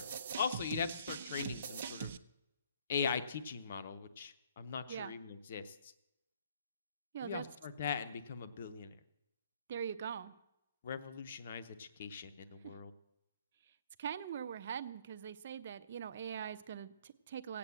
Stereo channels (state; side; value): inverted; both; correlation -0.61